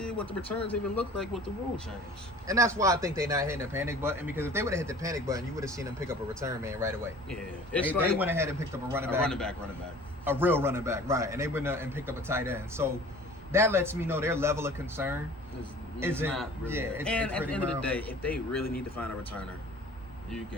what the returns even look like with the rule change. And that's why I think they're not hitting the panic button, because if they would have hit the panic button, you would have seen them pick up a return man right away. Yeah, they went ahead and picked up a running back, a real running back, right? And they went and picked up a tight end. So that lets me know their level of concern is not really. Yeah, and at the end of the day, if they really need to find a returner, you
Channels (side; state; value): both; normal; correlation 0.46